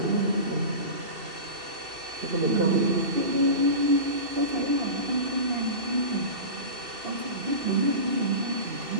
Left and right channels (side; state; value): left; late; 2.7 ms